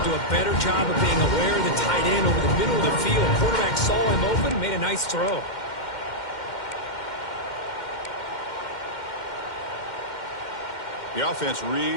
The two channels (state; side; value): late; right; 2.1 ms